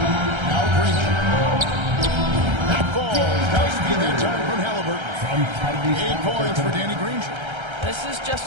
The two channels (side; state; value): left; late; 1.3 ms